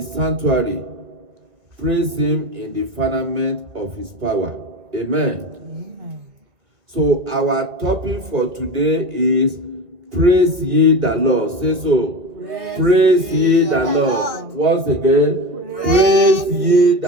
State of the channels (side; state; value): left; late; 2.1 ms